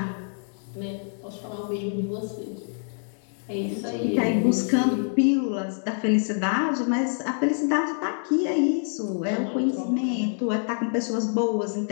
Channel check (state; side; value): silent; right; digital silence